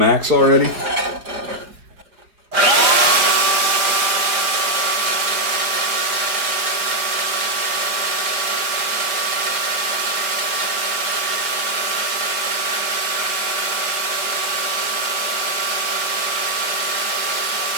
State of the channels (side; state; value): left; late; 4.8 ms